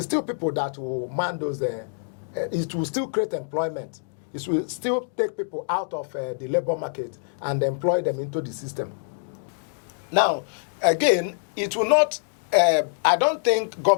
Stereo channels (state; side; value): silent; right; digital silence